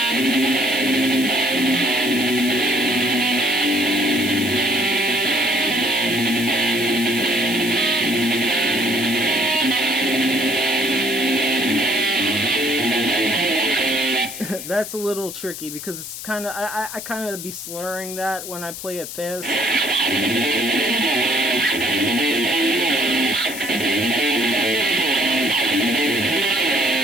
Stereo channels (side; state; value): left; noise; hiss, 10 dB below the sound